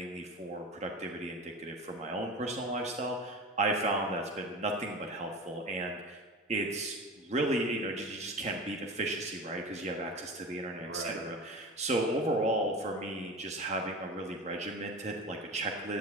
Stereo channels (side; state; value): both; normal; correlation 0.30